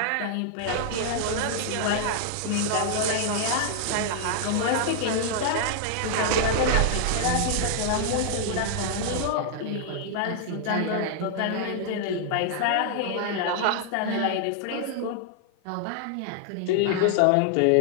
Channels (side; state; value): both; different; correlation -0.01